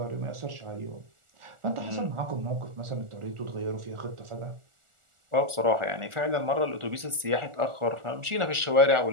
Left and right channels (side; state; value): left; late; 1.4 ms